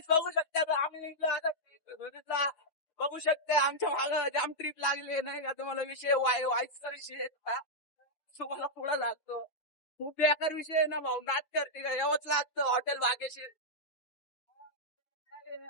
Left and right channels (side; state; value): right; late; 6.1 ms